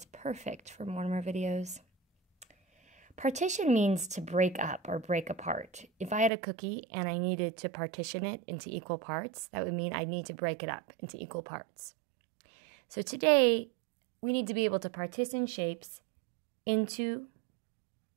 perfect for Mortimer videos. Partition means to break up or break apart. If I had a cookie and I needed to partition it into equal parts, that would mean I'd need to break it up into equal parts. So today, we need to be able to partition shapes into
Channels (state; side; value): drops out; left; at 6.3 s